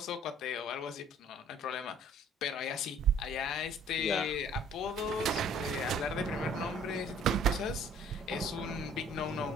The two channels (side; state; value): both; normal; correlation 0.56